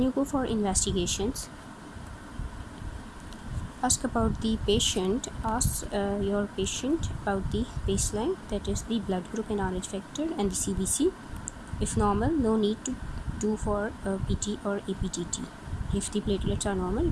you go for investigations. Ask about the patient. Ask your patient about the baseline, that is the blood group and Rh factor and the CBC. If normal, no need to do for PT or APTT. If the platelets are normal,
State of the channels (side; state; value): both; identical; correlation 1.00